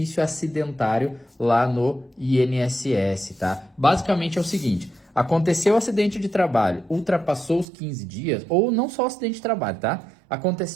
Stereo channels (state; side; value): drops out; left; at 7.7 s